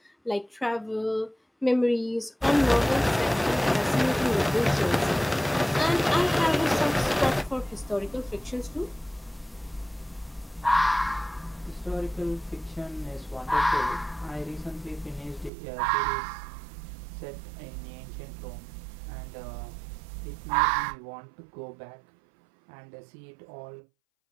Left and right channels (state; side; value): drops out; left; at 15.5 s